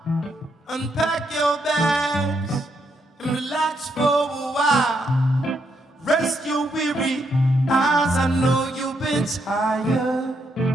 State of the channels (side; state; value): both; normal; correlation 0.77